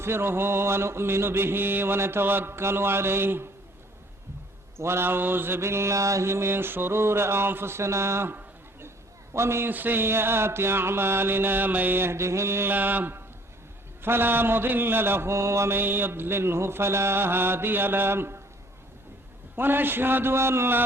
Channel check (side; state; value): both; normal; correlation 0.57